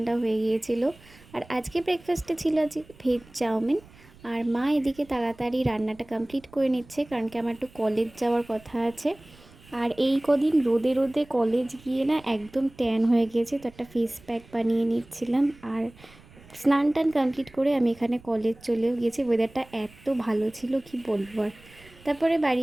হয়ে গিয়েছিল। আর আজকে ব্রেকফাস্টে ছিল আজকে ভেজ চাউমিন। আর মা এদিকে তাড়াতাড়ি রান্নাটা কমপ্লিট করে নিচ্ছে, কারণ কি আমার একটু কলেজ যাওয়ার কথা আছে। আর এই কদিন রোদে রোদে কলেজ গিয়ে না একদম ট্যান হয়ে গিয়েছে, তো একটা ফেস প্যাক বানিয়ে নিচ্ছিলাম। আর স্নান টান কমপ্লিট করে আমি এখানে কলেজ চলেও গিয়েছি। ওয়েদারটা এত ভালো ছিল কি বলবো আর। তারপরে বাড়ি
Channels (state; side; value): noise; right; rumble, 24 dB below the sound